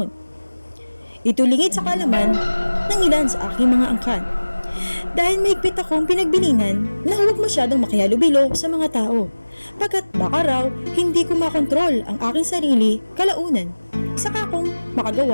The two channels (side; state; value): both; inverted; correlation -1.00